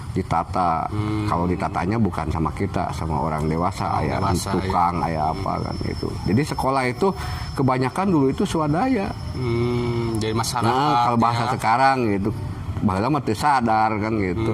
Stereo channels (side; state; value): both; identical; correlation 1.00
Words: ditata. Kalau ditatanya bukan sama kita, sama orang dewasa, aya tukang, aya apa kan itu. Jadi sekolah itu kebanyakan dulu itu swadaya. Jadi masyarakat. Nah, kalau bahasa ya. sekarang gitu, baheula mah teu sadar kan gitu.